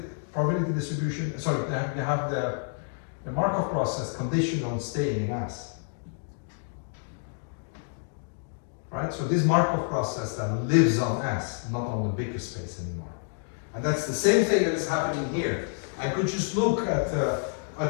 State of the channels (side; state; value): right; silent; 59 dB below the other